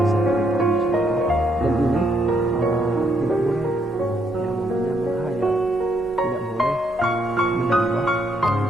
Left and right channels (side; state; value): both; normal; correlation 0.74